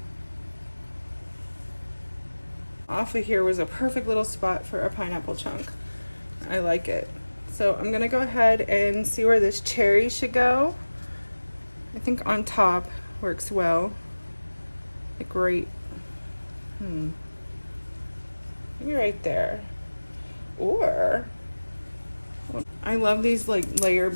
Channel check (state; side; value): inverted; both; correlation -1.00